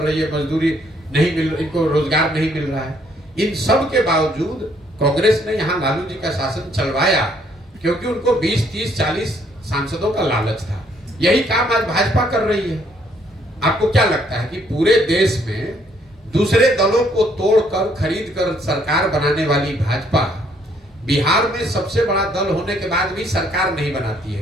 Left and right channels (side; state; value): both; normal; correlation 0.67